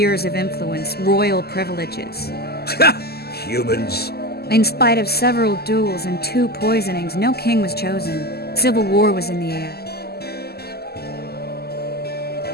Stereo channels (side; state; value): right; late; 0.46 ms